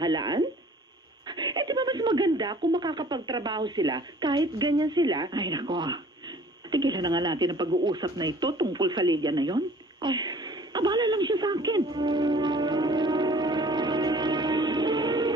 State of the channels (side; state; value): both; normal; correlation 0.51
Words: Di ba mas maganda kung makakapagtrabaho sila kahit ganyan sila? Ay nako. Tigilan na nga natin ang pag-uusap na ito tungkol sa Lydia na yon. Ay, Abala lang siya sa akin.